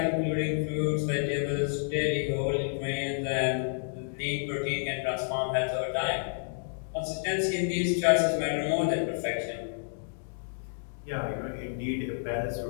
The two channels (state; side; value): silent; right; digital silence